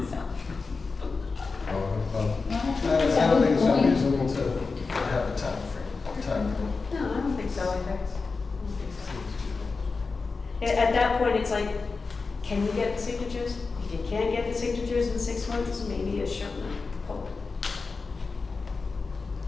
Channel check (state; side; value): quieter; right; 4.3 dB